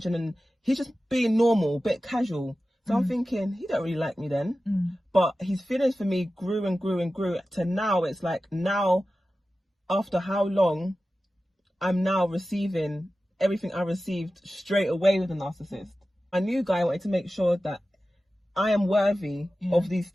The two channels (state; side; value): normal; both; correlation 0.94